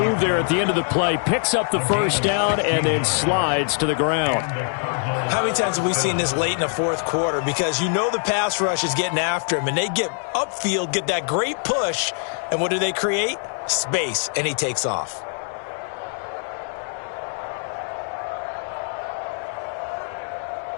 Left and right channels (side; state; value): right; silent; 63 dB below the other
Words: there at the end of the play. Picks up the first down and then slides to the ground. How many times have we seen this late in the fourth quarter? Because you know the pass rush is getting after him, and they get upfield, get that great push, and what do they create? Space, and he takes off.